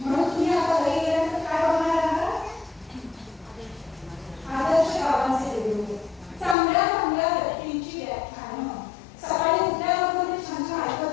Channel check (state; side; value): drops out; right; at 6.6 s